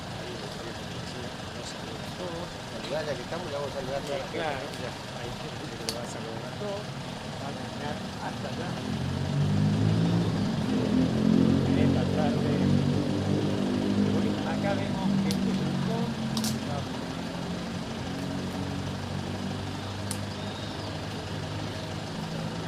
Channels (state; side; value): identical; both; correlation 1.00